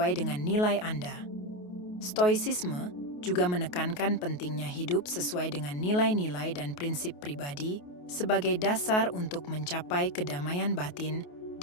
dengan nilai Anda. Stoicisme juga menekankan pentingnya hidup sesuai dengan nilai-nilai dan prinsip pribadi sebagai dasar untuk mencapai kedamaian batin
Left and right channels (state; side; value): late; right; 28 ms